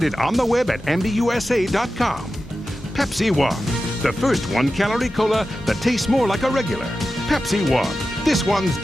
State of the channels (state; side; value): normal; both; correlation 0.93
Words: on the web at MBUSA.com. Pepsi One, the first 1-calorie cola that tastes more like a regular. Pepsi One, this one's